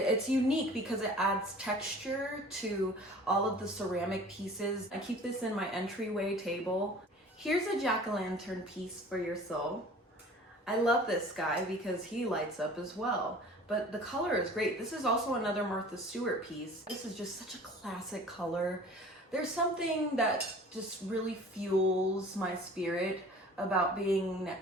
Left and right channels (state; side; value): normal; both; correlation 0.45